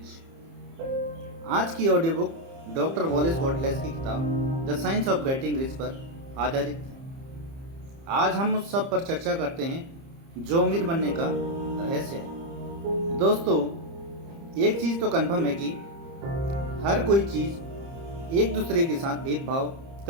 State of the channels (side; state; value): left; late; 30 ms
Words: आज की ऑडियो बुक डॉक्टर वॉलेस बॉटलेस की किताब the science of getting rich पर आधारित है। आज हम उस सब पर चर्चा करते हैं जो अमीर बनने का रहस्य है। दोस्तों, एक चीज़ तो कन्फर्म है कि हर कोई चीज़ एक दूसरे के साथ भेदभाव